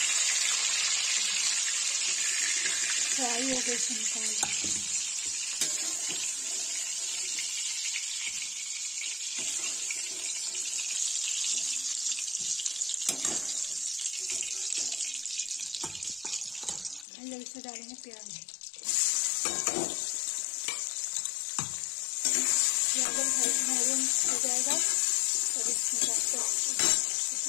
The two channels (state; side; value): drops out; right; at 17.1 s